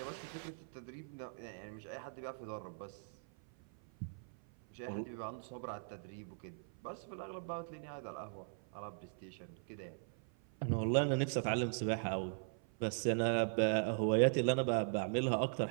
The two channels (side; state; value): left; silent; 51 dB below the other